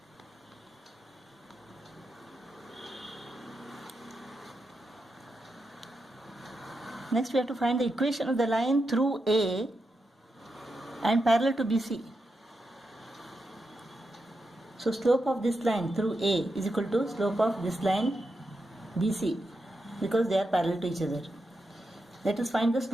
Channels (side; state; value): both; normal; correlation 0.87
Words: Next we have to find the equation of the line through A and parallel to BC. So slope of this line through A is equal to slope of this line BC because they are parallel to each other. Let us find the